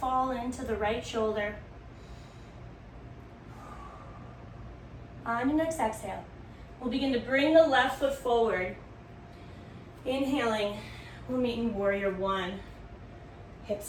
into the right shoulder. On your next exhale, we'll begin to bring the left foot forward. Inhaling, we'll meet in warrior one.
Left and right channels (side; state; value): both; identical; correlation 1.00